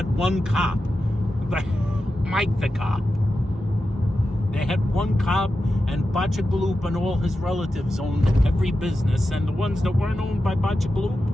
one cop. Mike the cop. They had one cop, and Bachagaloop and all his relatives owned every business. And the ones that weren't owned by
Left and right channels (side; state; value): both; normal; correlation 0.91